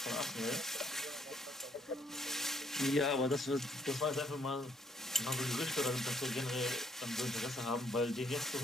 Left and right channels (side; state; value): both; normal; correlation 0.66